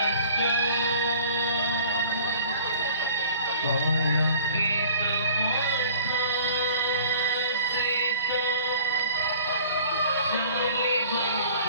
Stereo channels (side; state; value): both; inverted; correlation -0.49